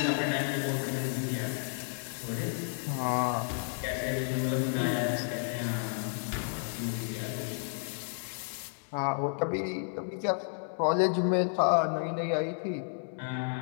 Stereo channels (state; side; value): silent; right; digital silence